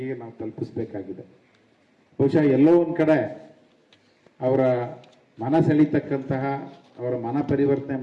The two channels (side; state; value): both; identical; correlation 1.00